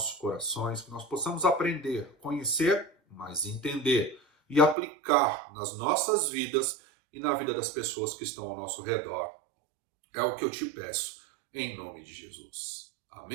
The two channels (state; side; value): drops out; left; at 4.8 s